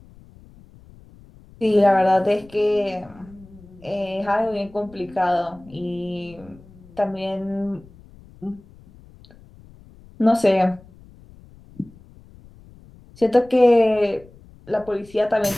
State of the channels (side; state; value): left; noise; rumble, 24 dB below the sound